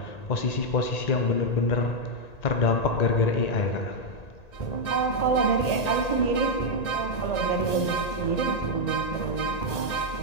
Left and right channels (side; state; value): right; late; 1.9 ms